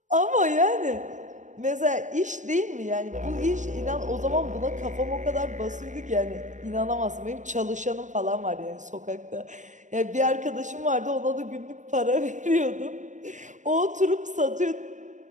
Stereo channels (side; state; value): left; late; 0.36 ms